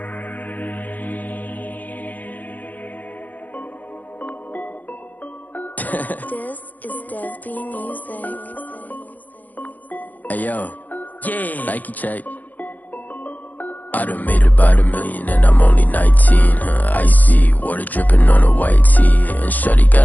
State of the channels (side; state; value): right; late; 0.082 ms